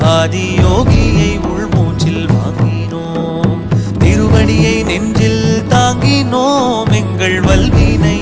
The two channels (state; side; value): identical; both; correlation 1.00